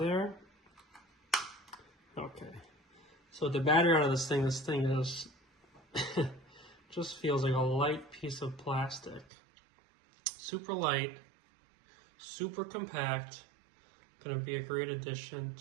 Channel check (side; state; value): left; drops out; at 9.2 s